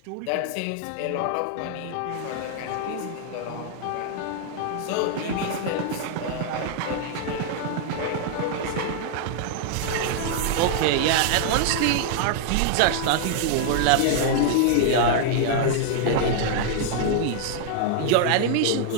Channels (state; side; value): different; both; correlation -0.01